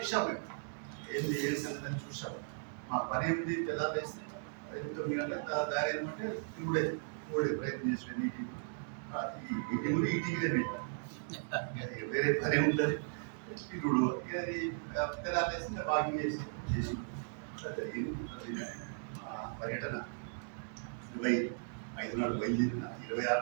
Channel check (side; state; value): left; silent; digital silence